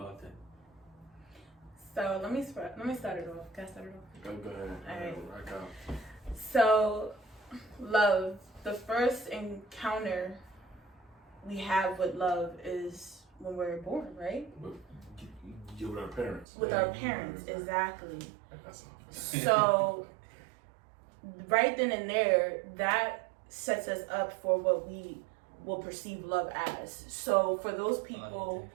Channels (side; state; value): left; drops out; at 16.4 s